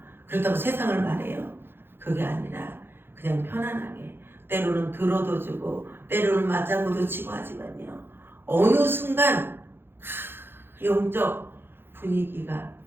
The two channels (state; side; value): late; left; 0.10 ms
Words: 그렇다고 세상을 말해요. 그게 아니라 그냥 편안하게 때로는 들어도 주고 때로는 맞장구도 치고 하지만요. 어느 순간 영적 분위기가